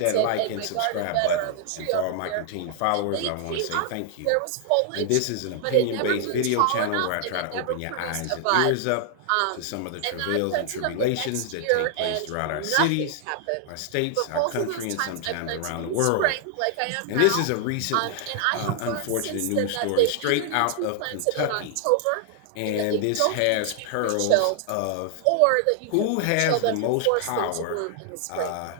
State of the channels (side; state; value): both; different; correlation 0.00